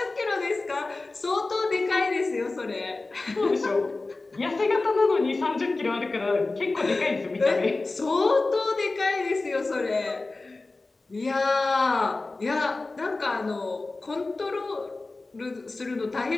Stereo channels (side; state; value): right; quieter; 3.4 dB